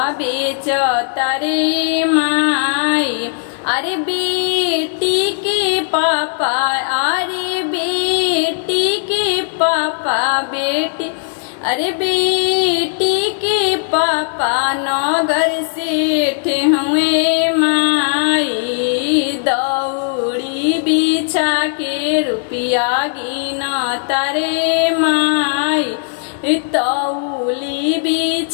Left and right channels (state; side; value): silent; right; digital silence